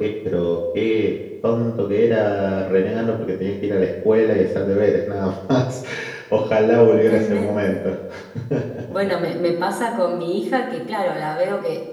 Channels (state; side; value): identical; both; correlation 1.00